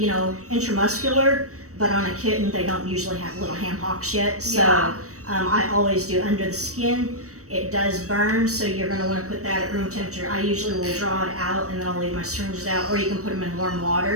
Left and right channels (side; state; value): left; late; 0.65 ms